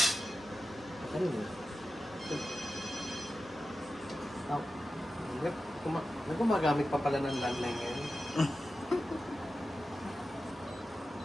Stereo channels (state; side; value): normal; both; correlation 0.93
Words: Ano yun? Gumagamit pa pala ng landline ngayon.